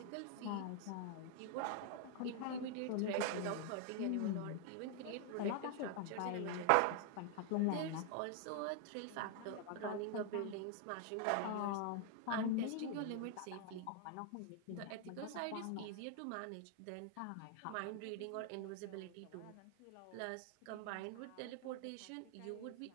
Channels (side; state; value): both; different; correlation 0.00